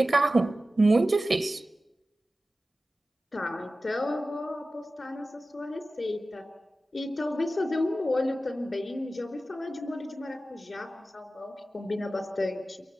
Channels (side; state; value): both; normal; correlation 0.95